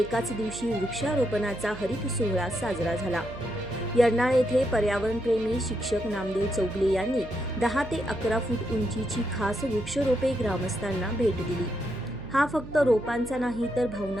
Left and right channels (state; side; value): noise; right; hum, 14 dB below the sound